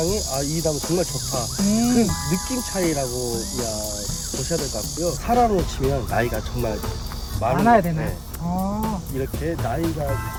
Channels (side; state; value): both; identical; correlation 1.00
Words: 이 나무 정말 좋다, 그 느낌 차이라고 보셔야 될 것 같고요. 사람으로 치면 나이가 정말 많아야 되나요? 네. 아, 이렇게 나이가